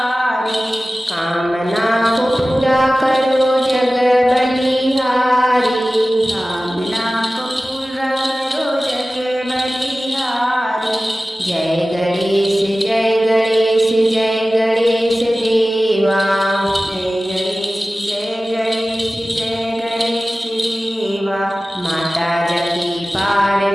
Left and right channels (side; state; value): both; normal; correlation 0.96